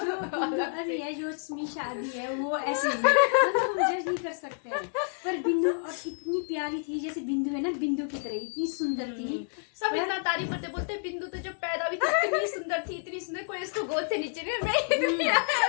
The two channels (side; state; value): right; silent; digital silence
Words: जो समीशा आदि है वो ऐसे ही मतलब हम जज नहीं कर सकते हैं। पर बिंदु और इतनी प्यारी थी, जैसे बिंदु है ना, बिंदु की तरह इतनी सुंदर थी। सब इतना तारीफ करते, बोलते बिंदु तो जब पैदा हुई थी इतनी सुंदर, कोई इसको गोद से नीचे नहीं, मैं इतनी